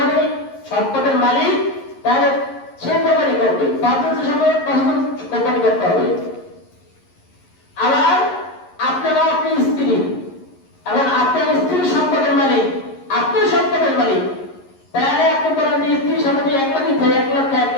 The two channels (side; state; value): right; late; 11 ms